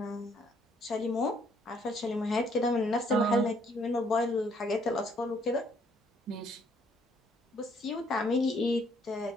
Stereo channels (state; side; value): normal; both; correlation 0.66